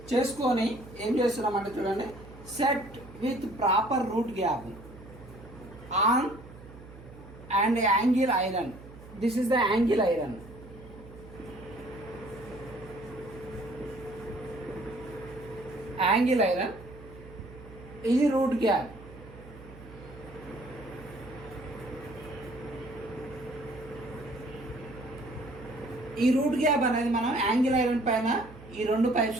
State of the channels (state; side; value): noise; right; hum, 18 dB below the sound